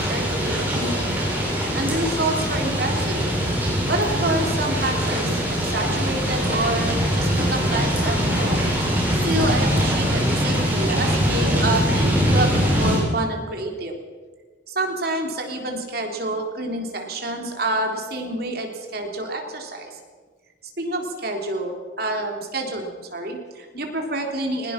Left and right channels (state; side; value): normal; both; correlation 0.45